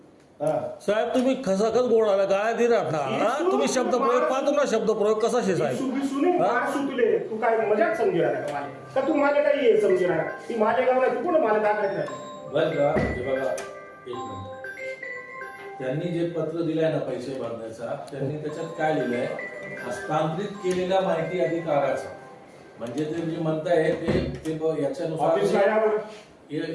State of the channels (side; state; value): both; identical; correlation 1.00